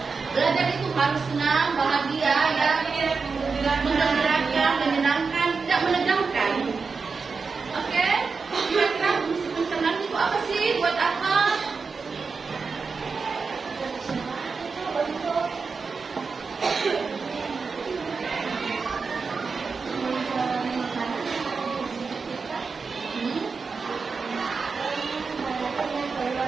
Belajar itu harus senang, bahagia, ya, menggembirakan, menyenangkan, tidak menegangkan. Oke, kira-kira fungsi pencernaan itu apa sih? Buat apa?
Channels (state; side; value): quieter; left; 4.8 dB